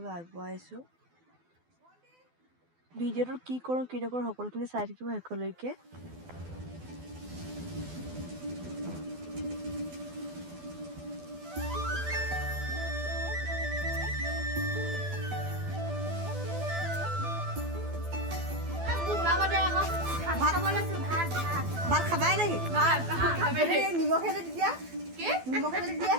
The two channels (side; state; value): left; late; 12 ms